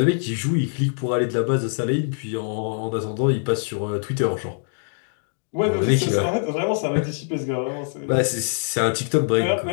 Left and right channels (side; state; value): right; silent; digital silence